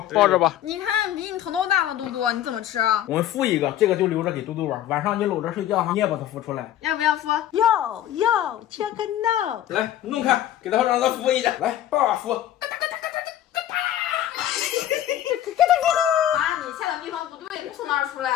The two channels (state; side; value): quieter; right; 11.9 dB